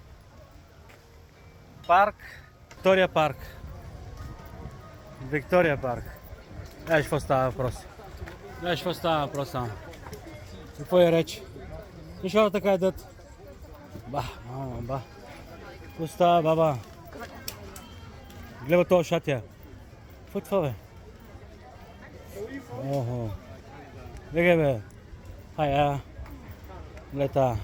парк, Виктория парк. Виктория парк. Знаеш какво става въпрос? Знаеш какво става въпрос само? Какво е реч? И хората така едат. Ба, мама, ба. Какво става, баба? Гледа това шатия. Какво е това, бе? Охо. Беге, бе. Хая. Лета.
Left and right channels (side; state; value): both; identical; correlation 1.00